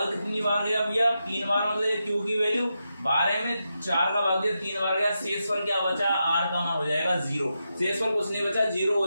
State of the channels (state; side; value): inverted; both; correlation -0.87